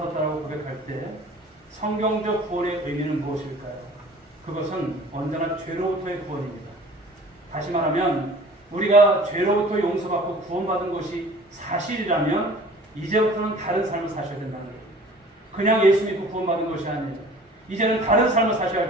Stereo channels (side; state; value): both; normal; correlation 0.47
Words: 고백할 때 성경적 구원의 의미는 무엇일까요? 그것은 언제나 죄로부터의 구원입니다. 다시 말하면 우리가 죄로부터 용서받고 구원받은 것이 사실이라면 이제부터는 다른 삶을 사셔야 된다는 거예요. 그냥 예수 믿고 구원받은 것이 아니에요. 이제는 다른 삶을 사셔야